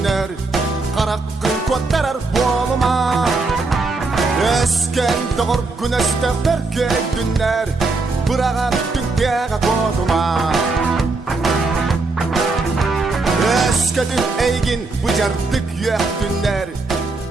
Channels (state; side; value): quieter; left; 3.6 dB